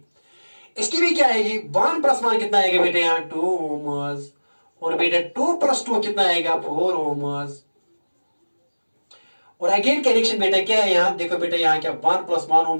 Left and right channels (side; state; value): both; inverted; correlation -1.00